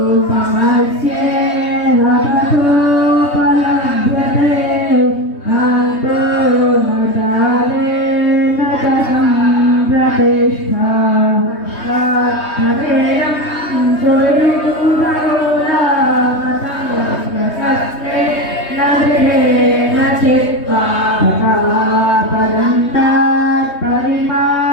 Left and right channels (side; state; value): right; late; 3.2 ms